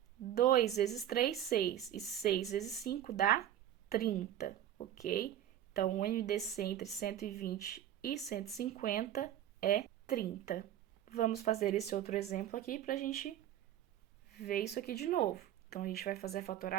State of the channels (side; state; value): left; quieter; 11.3 dB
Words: 2 vezes 3, 6. E 6 vezes 5 dá 30, ok? Então, o MDC entre 120 e 150 é 30. Vamos fazer esse outro exemplo aqui para a gente ver isso aqui de novo. Então, a gente vai fazer a